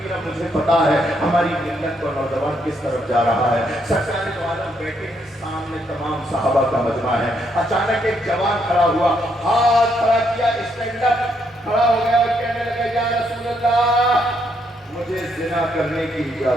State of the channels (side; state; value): both; normal; correlation 0.75